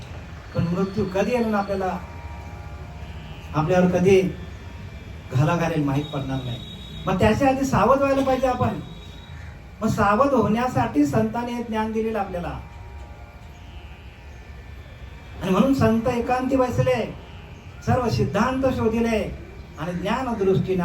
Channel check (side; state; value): both; identical; correlation 1.00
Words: पण मृत्यू कधी येईल ना आपल्याला, आपल्यावर कधी घाला घालेल माहीत पडणार नाही. मग त्याच्या आधी सावध व्हायला पाहिजे आपण. मग सावध होण्यासाठी संतांनी हे ज्ञान दिलेलं आपल्याला. आणि म्हणून संत एकांती बसले, सर्व सिद्धांत शोधिले आणि ज्ञान दृष्टीने